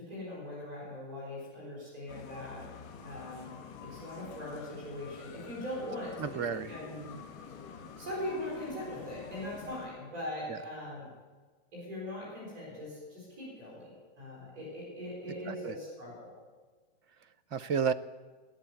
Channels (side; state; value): left; late; 2.5 ms